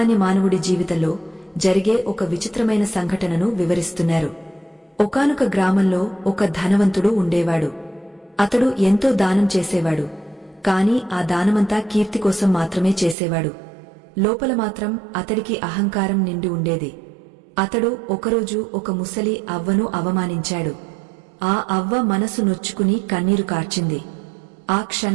మానవుడి జీవితంలో జరిగే ఒక విచిత్రమైన సంఘటనను వివరిస్తున్నారు. ఒకానొక గ్రామంలో ఒక ధనవంతుడు ఉండేవాడు. అతడు ఎంతో దానం చేసేవాడు. కాని ఆ దానమంతా కీర్తి కోసం మాత్రమే చేసేవాడు. లోపల మాత్రం అతడికి అహంకారం నిండి ఉండేది. అతడు ఒకరోజు ఒక ముసలి అవ్వను అవమానించాడు. ఆ అవ్వ మనసు నొచ్చుకుని కన్నీరు కార్చింది. ఆ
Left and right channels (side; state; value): left; drops out; at 13.2 s